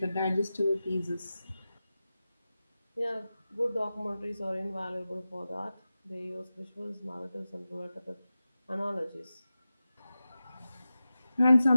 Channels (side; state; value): both; inverted; correlation -0.94